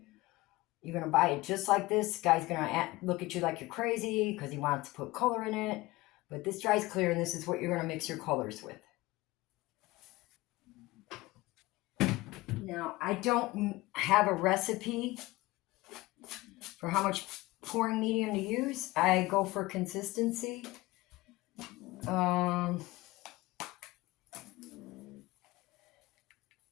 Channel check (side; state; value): right; quieter; 20.1 dB